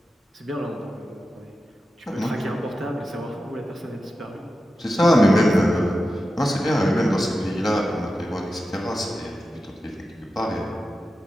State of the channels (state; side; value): normal; both; correlation 0.92